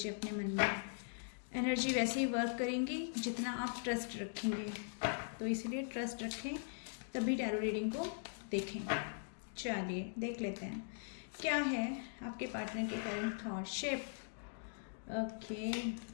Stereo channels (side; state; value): right; silent; digital silence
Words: अपने मन में। एनर्जी वैसे ही वर्क करेंगी जितना आप ट्रस्ट रखेंगे, तो इसलिए ट्रस्ट रखें तभी टैरो रीडिंग को देखें। चलिए देख लेते हैं क्या है आपके पार्टनर के current through shape. Okay,